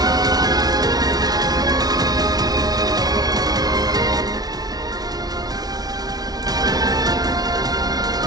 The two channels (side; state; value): left; late; 0.19 ms